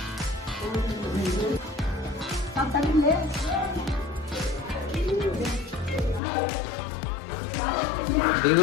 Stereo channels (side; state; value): right; drops out; at 6.2 s